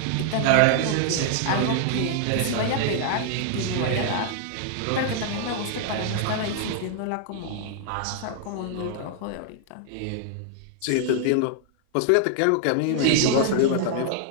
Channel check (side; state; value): both; different; correlation -0.01